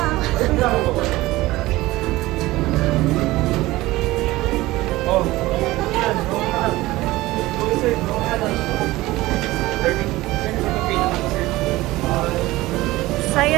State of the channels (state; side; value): quieter; left; 18.4 dB